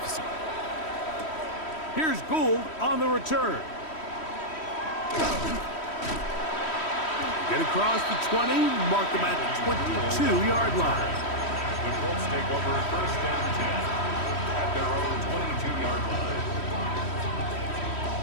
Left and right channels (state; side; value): late; right; 3.1 ms